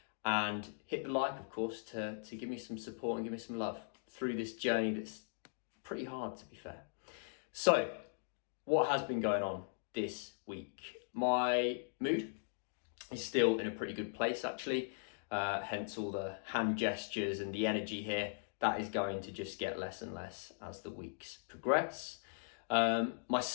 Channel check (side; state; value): right; silent; digital silence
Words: And hit the like, of course, to give me some support and give me some love through this journey that's pretty hard, to be fair. So, what has been going on this week? My mood is still in a pretty good place, actually. Hence all the hand gestures and the energy here. That is going to just get less and less as the weeks progress. My